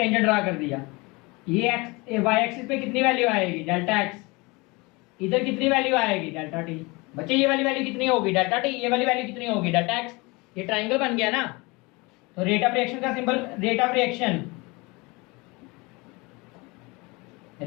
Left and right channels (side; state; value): right; quieter; 25.5 dB